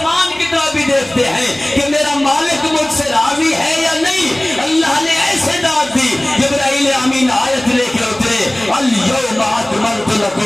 کی طرف بھی دیکھتے ہیں کہ میرا مالک مجھ سے راضی ہے یا نہیں۔ اللہ نے ایسے داد دی، جبرائیل امین آیت لے کے اترے، الیوم اکملت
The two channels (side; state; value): left; noise; rumble, 28 dB below the sound